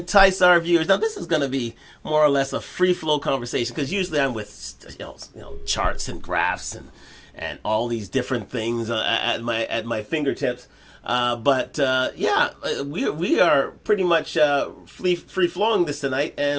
our viewers. Now, this is going to be more or less a free-flow conversation because usually I'm with charts and graphs and all these different things at my fingertips. We are pretty much free-flowing this tonight,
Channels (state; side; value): identical; both; correlation 1.00